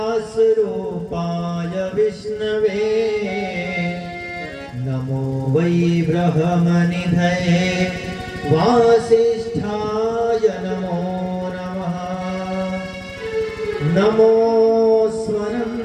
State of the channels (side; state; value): both; identical; correlation 1.00